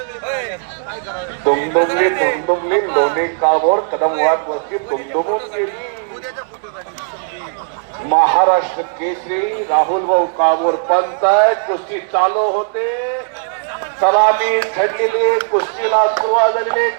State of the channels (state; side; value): silent; left; 68 dB below the other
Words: दुमदुमली दुमदुमली लोणी काळभोर कदम वाकवस्ती दुमदुमून गेली. महाराष्ट्र केसरी राहुल भाऊ काळभोर पंचायत कुस्ती चालू होते. सलामी थंडलेली, कुस्तीला सुरुवात झालेली.